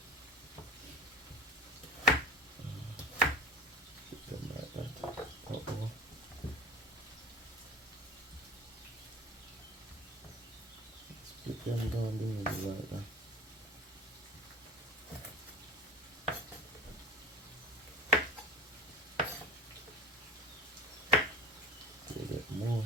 Split them down the middle like that. So you get more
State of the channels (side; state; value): both; normal; correlation 0.36